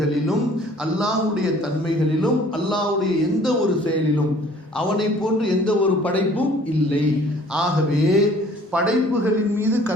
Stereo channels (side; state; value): both; normal; correlation 0.54